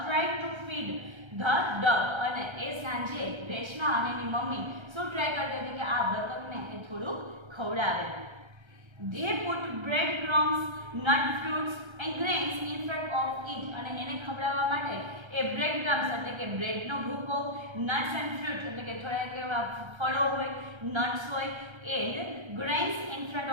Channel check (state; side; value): late; left; 1.3 ms